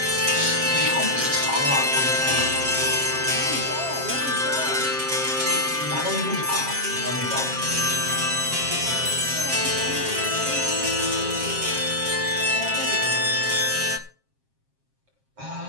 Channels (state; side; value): late; left; 7.5 ms